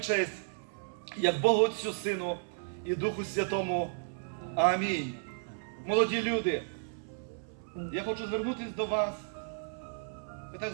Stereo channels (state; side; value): silent; left; 56 dB below the other